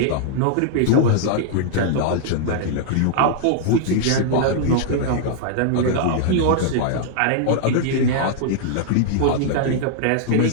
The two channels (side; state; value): both; different; correlation -0.01